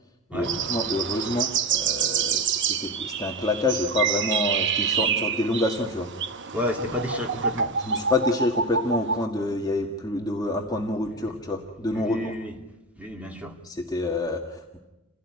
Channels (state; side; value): normal; both; correlation 0.20